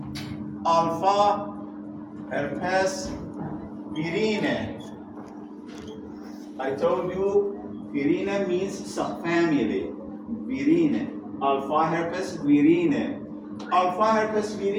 Alpha herpes virine. I told you virine means subfamily. Virine. Alpha herpes virine. Alpha herpes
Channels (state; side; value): identical; both; correlation 1.00